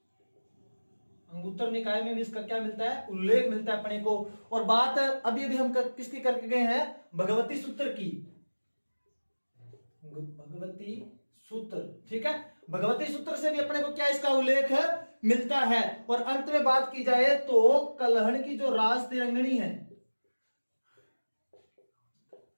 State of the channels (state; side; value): inverted; both; correlation -1.00